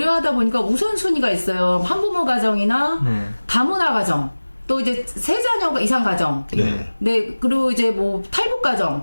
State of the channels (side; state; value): both; inverted; correlation -1.00